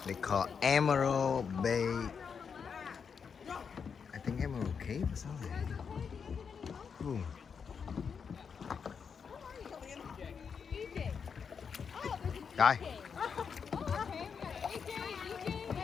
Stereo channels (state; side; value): quieter; right; 6.3 dB